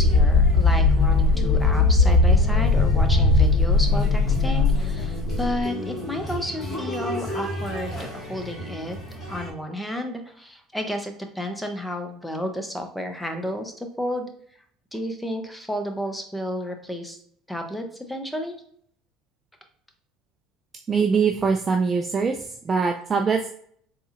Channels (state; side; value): normal; both; correlation 0.44